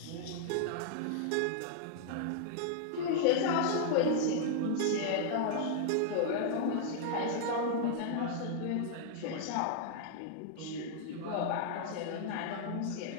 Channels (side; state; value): both; different; correlation -0.01